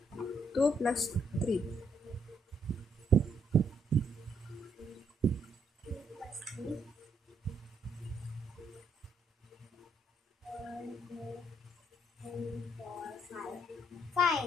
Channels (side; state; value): both; normal; correlation 0.73